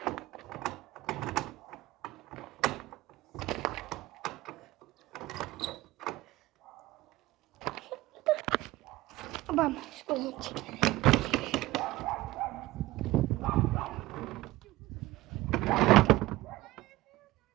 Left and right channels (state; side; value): quieter; left; 18.3 dB